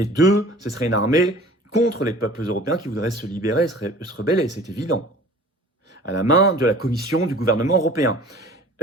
2, ce serait une armée contre les peuples européens qui voudraient se libérer, se rebeller, c'est évident. À la main de la Commission, du gouvernement européen.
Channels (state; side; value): normal; both; correlation 0.46